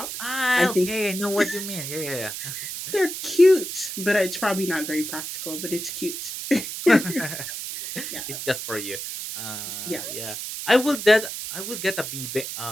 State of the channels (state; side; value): noise; right; hiss, 6 dB below the sound